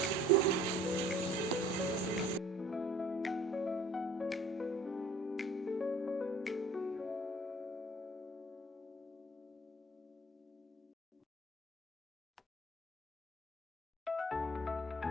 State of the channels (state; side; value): normal; both; correlation 0.51